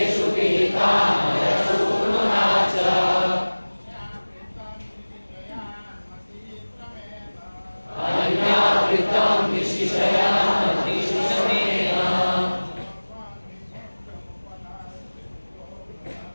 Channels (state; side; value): inverted; both; correlation -1.00